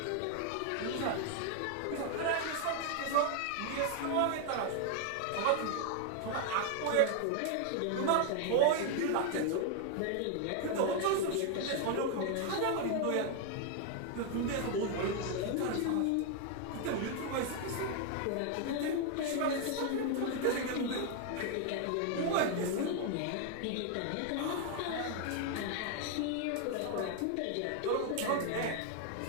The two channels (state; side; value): different; both; correlation 0.00